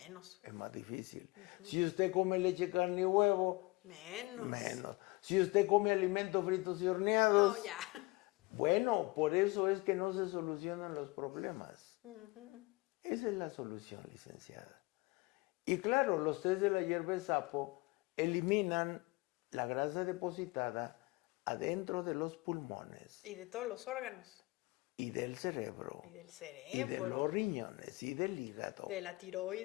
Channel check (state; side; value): quieter; right; 23.2 dB